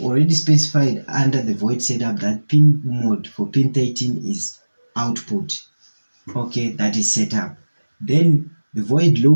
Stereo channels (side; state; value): both; inverted; correlation -1.00